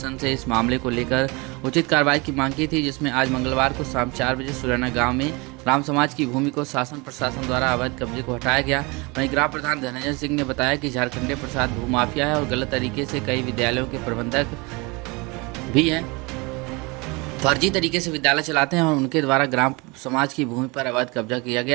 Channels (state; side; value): quieter; left; 26.8 dB